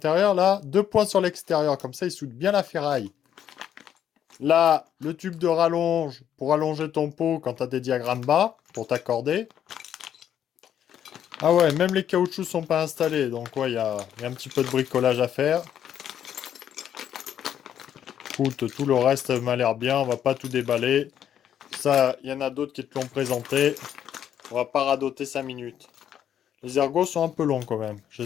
Là, 2 points sur l'extérieur. Comme ça, il soude bien la ferraille. Là, le tube de rallonge pour allonger ton pot quand tu as des diagrammes bas, pour t'accorder. Ah ouais, même les caoutchoucs sont pas installés. Donc ouais, il y a un petit peu de bricolage à faire. Écoute, tout le reste m'a l'air bien. On va pas tout déballer. Ça, il y en a d'autres qui te l'ont présenté. On va pas radoter 5 minutes. Les ergots sont un peu longs quand même.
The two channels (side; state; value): right; quieter; 9.8 dB